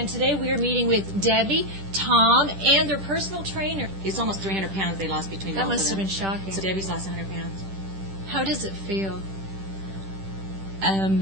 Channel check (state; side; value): late; left; 10 ms